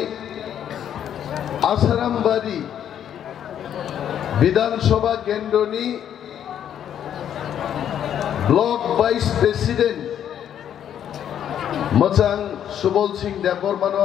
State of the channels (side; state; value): right; quieter; 9.7 dB